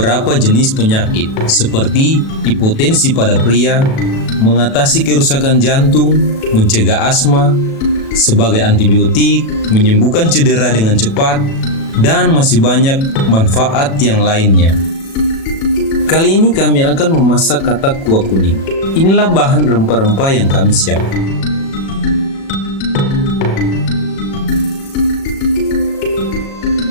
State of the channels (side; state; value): right; late; 36 ms